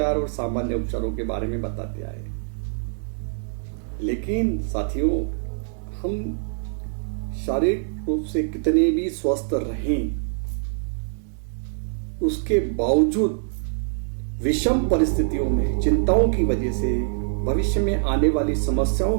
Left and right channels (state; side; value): silent; left; 62 dB below the other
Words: और सामान्य उपचारों के बारे में बताते आए, लेकिन साथियों, हम शारीरिक रूप से कितने भी स्वस्थ रहें, उसके बावजूद विषम परिस्थितियों में, चिंताओं की वजह से, भविष्य में आने वाली समस्याओं